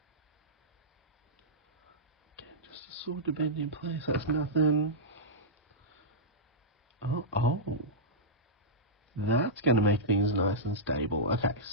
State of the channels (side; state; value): both; normal; correlation -0.13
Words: Sword to bend in place, that's nothing. Oh. That's going to make things nice and stable. Okay,